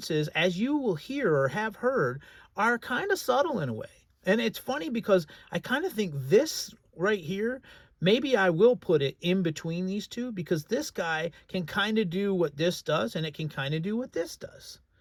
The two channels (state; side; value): identical; both; correlation 1.00